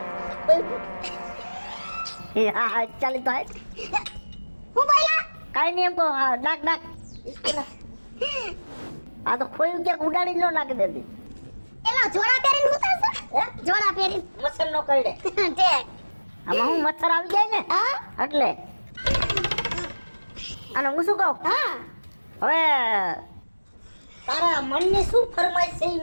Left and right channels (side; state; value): both; inverted; correlation -1.00